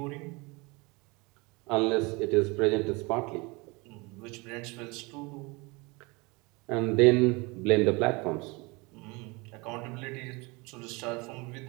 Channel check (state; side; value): quieter; left; 26.4 dB